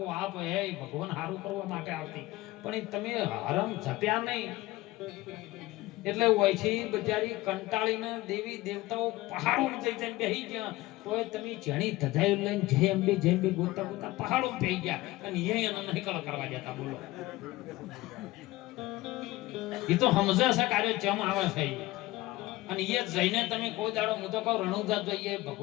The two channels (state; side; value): quieter; right; 18.7 dB